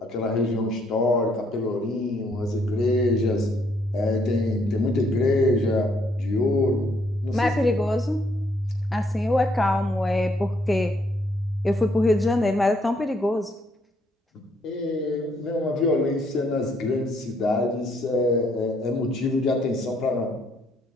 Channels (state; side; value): normal; both; correlation 0.70